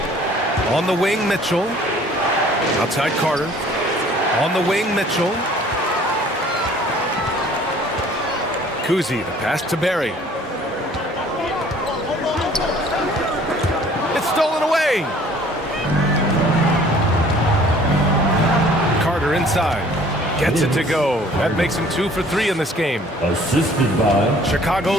On the wing, Mitchell. Outside Carter. On the wing, Mitchell. Kuzi, the pass to Barry. It's stolen away. Carter inside. Gets it to go. That makes him 2 for 3 in this game. Assisted by Chicago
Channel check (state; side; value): normal; both; correlation 0.54